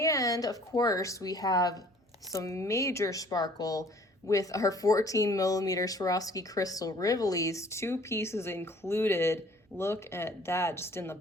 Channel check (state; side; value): normal; both; correlation 0.55